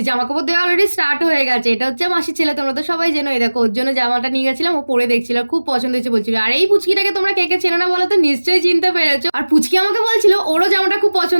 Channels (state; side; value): inverted; both; correlation -1.00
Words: জামা কাপড় দেওয়া অলরেডি স্টার্ট হয়ে গেছে। এটা হচ্ছে মাসির ছেলে, তোমরা তো সবাই জেনো। এই দেখো, ওর জন্য জামাটা নিয়ে গেছিলাম, ও পরে দেখছিল, খুব পছন্দ হয়েছে বলছিল। আর এই পুচকিটাকে তোমরা কে কে চেনো না বলো তো, নিশ্চয়ই চিনতে পেরেছো। আর পুচকি আমাকে বলছিল ওরও জামাটা খুব